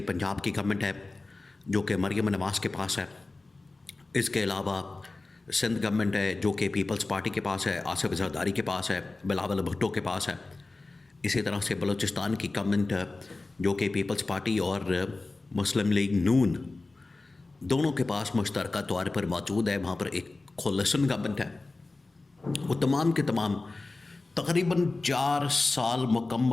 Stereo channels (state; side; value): quieter; right; 3.3 dB